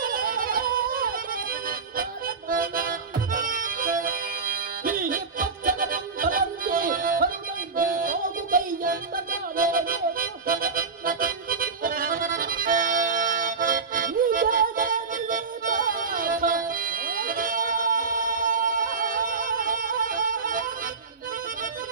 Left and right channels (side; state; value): left; quieter; 4.9 dB